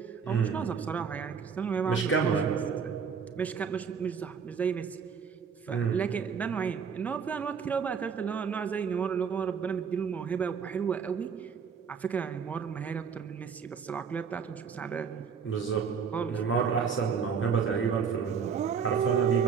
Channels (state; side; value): quieter; left; 6.4 dB